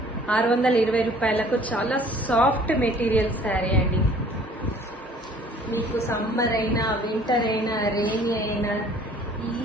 620 రూపాయలకు చాలా సాఫ్ట్ మెటీరియల్ శారీ అండి. మీకు సమ్మర్ అయినా వింటర్ అయినా రెయినీ అయినా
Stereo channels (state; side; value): normal; both; correlation 0.54